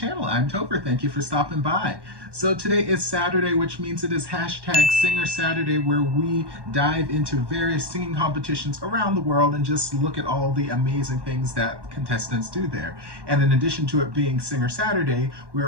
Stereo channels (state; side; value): late; left; 1.1 ms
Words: I'm Topher. Thank you for stopping by. So today is Saturday, which means it is hashtag Singer Saturday, where we dive into various singing competitions around the world and just look at all the amazing things that contestants do there. And in addition to it being Singer Saturday,